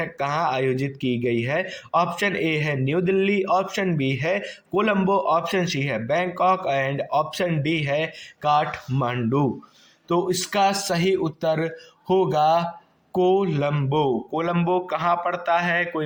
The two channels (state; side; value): identical; both; correlation 1.00